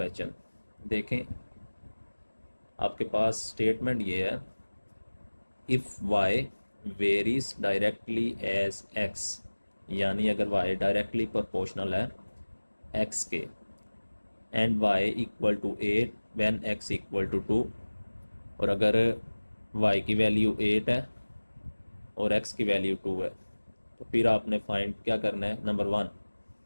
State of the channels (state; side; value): inverted; both; correlation -1.00